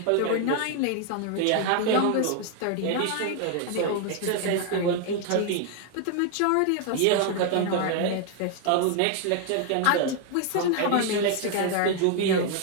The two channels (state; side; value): different; both; correlation 0.00